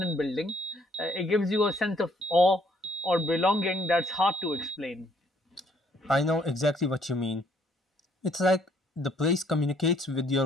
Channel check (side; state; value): both; normal; correlation 0.65